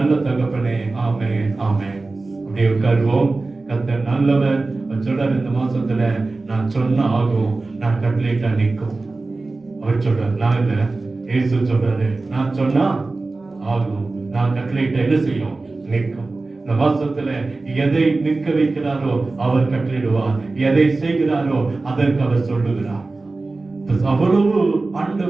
தகப்பனே, ஆமென், ஆமென். அப்படியே உட்காருவோம். கர்த்தர் நல்லவர். சொல்றார், இந்த மாசத்துல நான் சொன்ன ஆகும், நான் கட்டளையிட்டா நிற்கும். அவர் சொல்றார், நான் இல்ல, இயேசு சொல்றாரு, நான் சொன்னா ஆகும், நான் கட்டளையிட்டா என்ன செய்யும்? நிற்கும். இந்த மாசத்துல எதை நிற்க வைக்கிறாரோ அவர் கட்டளையிடுவார், எதை செய்கிறாரோ அதற்கு அவர் சொல்லுகிறார். அவ்வளவு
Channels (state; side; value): quieter; left; 3.5 dB